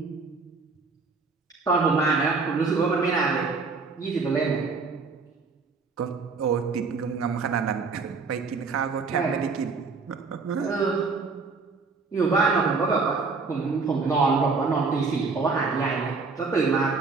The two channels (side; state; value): left; quieter; 4.4 dB